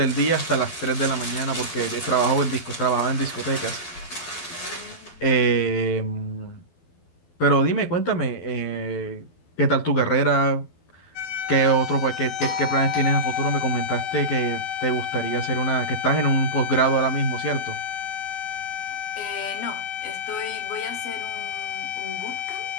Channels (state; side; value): late; right; 12 ms